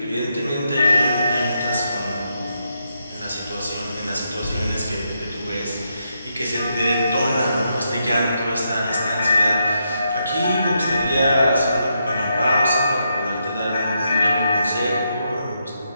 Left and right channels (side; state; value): both; inverted; correlation -0.81